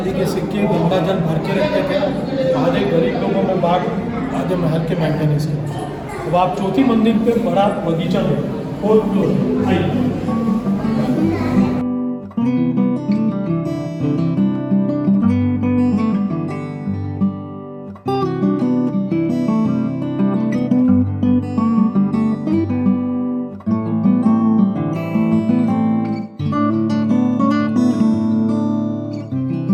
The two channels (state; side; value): identical; both; correlation 1.00